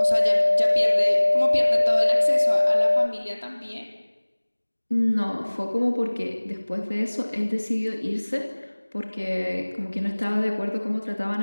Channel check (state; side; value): inverted; both; correlation -1.00